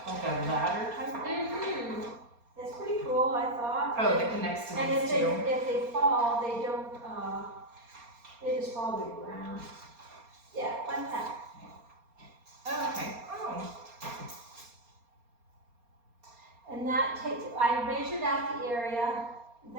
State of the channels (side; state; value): left; late; 4.3 ms